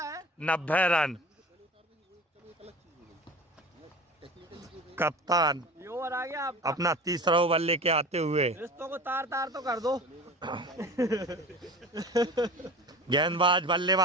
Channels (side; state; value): both; normal; correlation 0.36